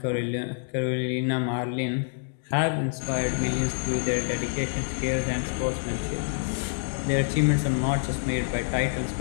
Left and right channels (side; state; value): right; silent; 60 dB below the other